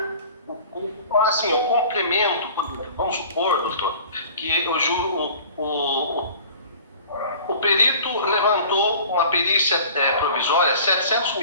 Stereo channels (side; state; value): both; inverted; correlation -0.45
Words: o complemento, vamos supor, doutor, que o perito levantou uma perícia provisória 700